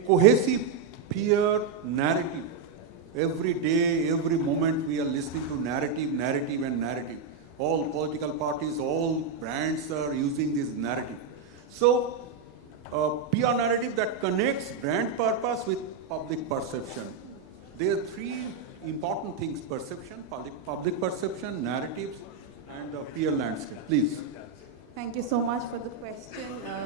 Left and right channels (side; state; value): left; quieter; 5.3 dB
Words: cohesive peer narrative? Every day, every moment, we are listening to narrative. All political parties, all brands are using this narrative. So, PR narrative that connects brand purpose with public perception. There are three important things: perception, public perception, narrative, and PR narrative. Please. Thank you so much for the question.